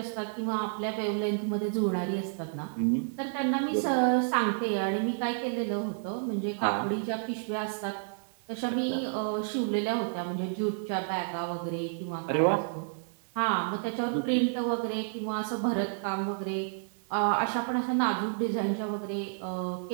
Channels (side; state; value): left; silent; 58 dB below the other